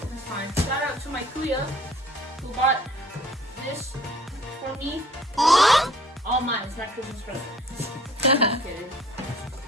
that's fine. Shout out to my kuya who bought this for me. All mine. It's my Christmas present. Just kidding.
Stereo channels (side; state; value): both; normal; correlation 0.54